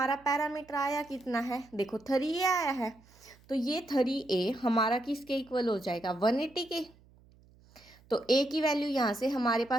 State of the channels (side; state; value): right; noise; hum, 28 dB below the sound